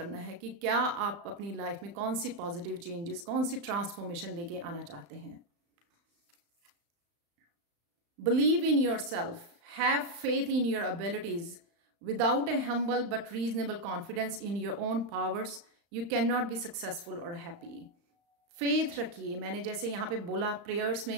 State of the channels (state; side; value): late; left; 35 ms